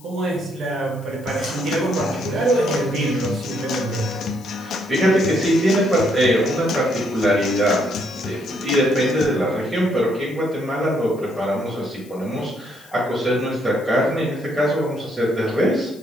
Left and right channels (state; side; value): noise; left; hiss, 25 dB below the sound